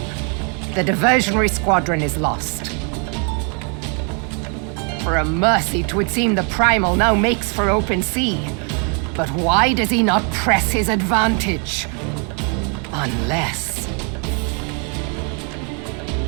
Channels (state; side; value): quieter; left; 38.4 dB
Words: The diversionary squadron is lost. For a mercy, 'twould seem the Primal now makes for open sea. But why does he not press his advantage? Unless...